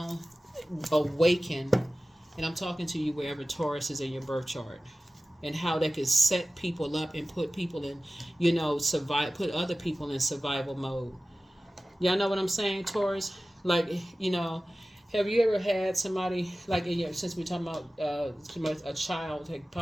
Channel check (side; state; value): both; normal; correlation 0.96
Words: awakened. And I'm talking to you wherever Taurus is in your birth chart, and how that could set people up and put people in, you know, put other people in survival mode. Y'all know what I'm saying, Taurus? Like, you know, have you ever had somebody, like, since we're talking about a child, like